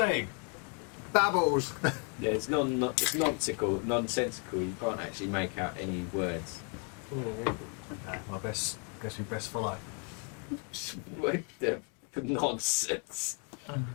Babbles. Yeah, it's nonsensical. You can't actually make out any words. Guess we best follow. What the nonsense?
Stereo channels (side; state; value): right; quieter; 39.2 dB